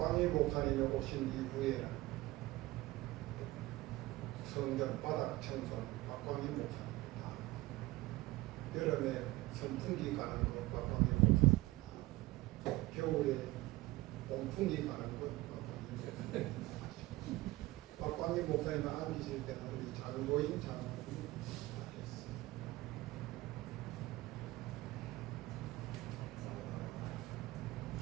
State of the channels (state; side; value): quieter; left; 19.1 dB